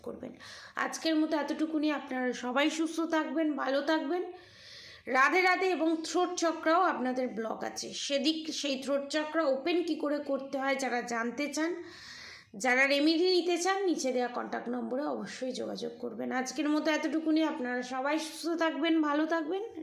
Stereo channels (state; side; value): identical; both; correlation 1.00